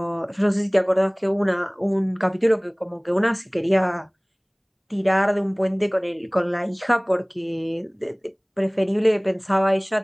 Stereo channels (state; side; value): identical; both; correlation 1.00